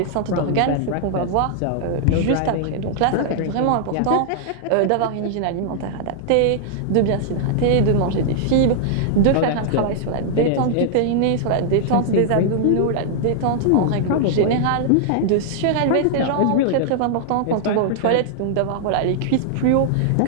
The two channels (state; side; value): different; both; correlation -0.01